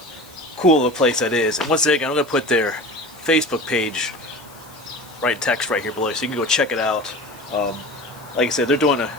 cool of a place that is. And once again, I'm going to put their Facebook page right in text right here below, so you can go check it out. Like I said, they're doing a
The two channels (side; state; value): left; noise; hiss, 25 dB below the sound